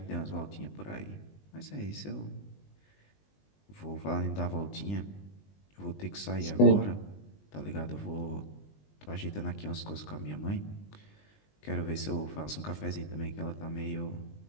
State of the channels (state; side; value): late; right; 20 ms